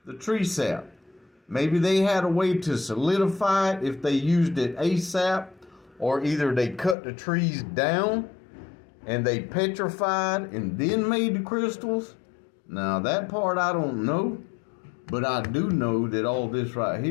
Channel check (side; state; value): right; drops out; at 7.0 s